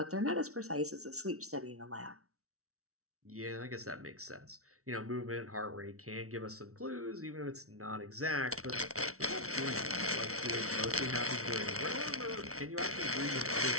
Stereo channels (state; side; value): late; left; 0.64 ms